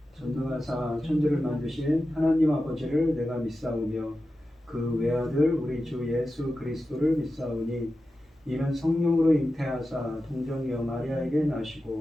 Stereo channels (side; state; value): both; normal; correlation 0.92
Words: 전능하사 천지를 만드신 하나님 아버지를 내가 믿사오며 그 외아들 우리 주 예수 그리스도를 믿사오니 이는 성령으로 잉태하사 동정녀 마리아에게